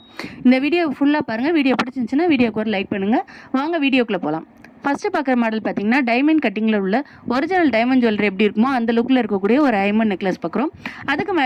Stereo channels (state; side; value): identical; both; correlation 1.00